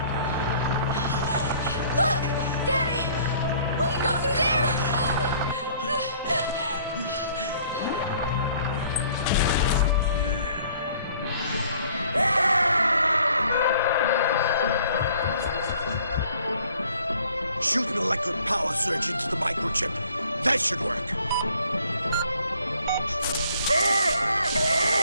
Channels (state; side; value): inverted; both; correlation -0.57